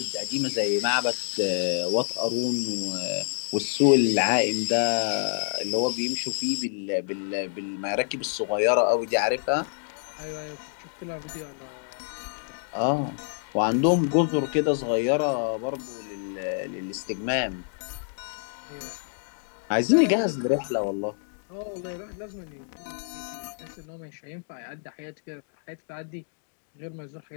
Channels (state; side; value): silent; right; digital silence